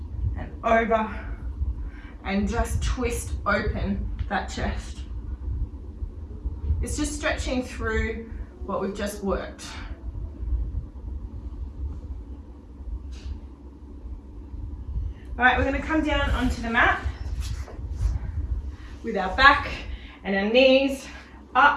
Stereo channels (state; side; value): identical; both; correlation 1.00